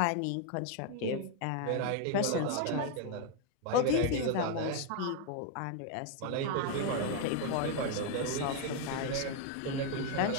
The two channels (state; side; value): different; both; correlation 0.01